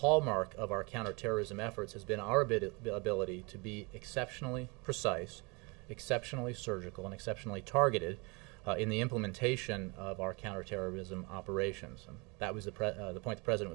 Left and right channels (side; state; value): left; quieter; 29.2 dB